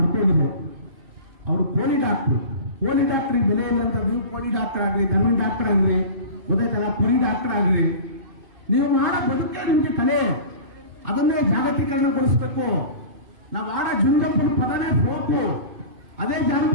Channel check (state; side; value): late; left; 2.5 ms